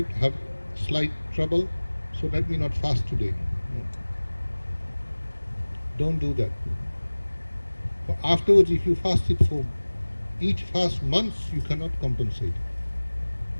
have slight trouble, so let me not fast today. No. Don't do that. For afterwards, if you fast it for each fast months, you cannot compensate.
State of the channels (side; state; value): both; inverted; correlation -1.00